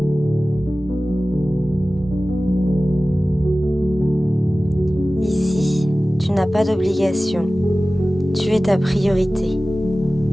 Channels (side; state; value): both; normal; correlation 0.97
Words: Ici, tu n'as pas d'obligation. Tu es ta priorité.